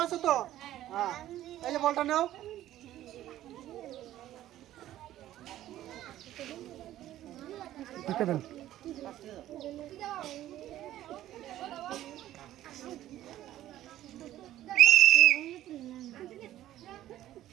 আছো তো? হ্যাঁ, এই যে বলটা নাও।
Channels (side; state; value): left; quieter; 13.4 dB